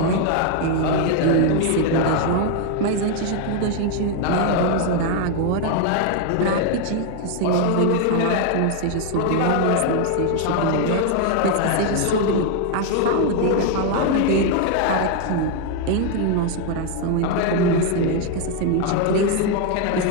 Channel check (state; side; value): different; both; correlation 0.01